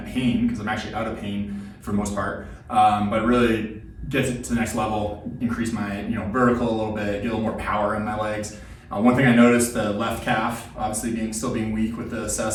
pain, because I'm actually out of pain for the most part, but really get it to the next level, increase my vertical a little bit, get a little more power in my legs. One thing I noticed, the left calf, obviously still being weak with the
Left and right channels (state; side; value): identical; both; correlation 1.00